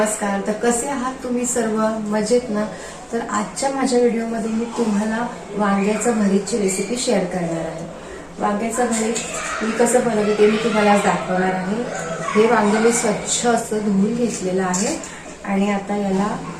तर कसे आहात तुम्ही सर्व? मजेत ना? तर आजच्या माझ्या व्हिडिओमध्ये मी तुम्हाला वांग्याचं भरीतची रेसिपी शेअर करणार आहे. वांग्याचं भरीत मी कसं बनवते ते मी तुम्हाला आज दाखवणार आहे. हे वांगे मी स्वच्छ असं धुवून घेतलेलं आहे आणि आता याला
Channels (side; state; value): both; identical; correlation 1.00